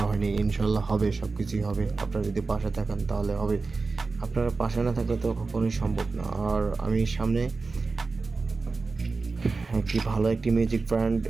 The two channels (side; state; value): left; quieter; 4.0 dB